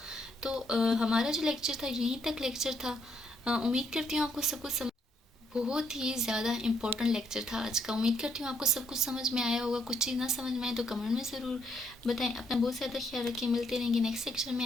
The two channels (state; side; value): normal; both; correlation 0.73